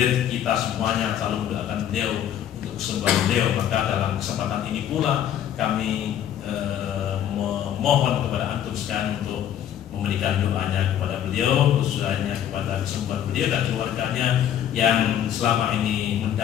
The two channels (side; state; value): right; quieter; 10.3 dB